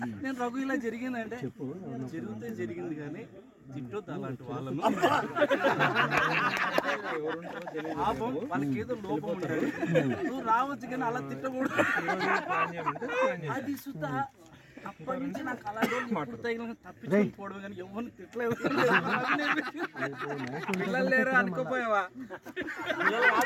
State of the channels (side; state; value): both; identical; correlation 1.00